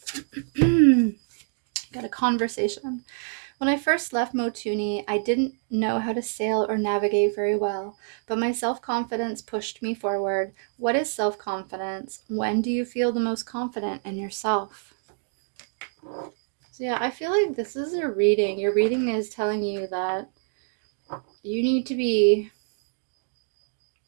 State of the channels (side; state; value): left; silent; digital silence